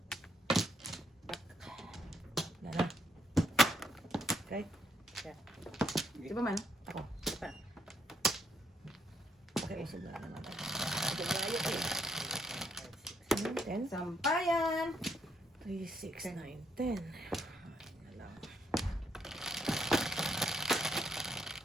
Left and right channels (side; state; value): both; normal; correlation 0.74